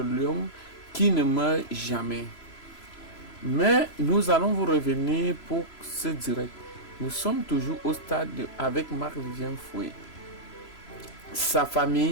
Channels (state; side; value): late; right; 3.0 ms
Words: lion qui ne meurt jamais. Mais nous allons vous revenir pour ce direct. Nous sommes toujours au stade avec Marc-Vivien Foé. Sa